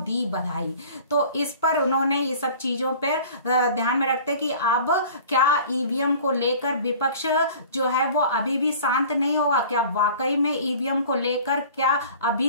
दी बधाई। तो इस पर उन्होंने ये सब चीजों पर ध्यान में रखते कि अब क्या ईवीएम को लेकर विपक्ष जो है वो अभी भी शांत नहीं होगा, क्या वाकई में ईवीएम को लेकर क्या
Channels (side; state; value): both; inverted; correlation -0.45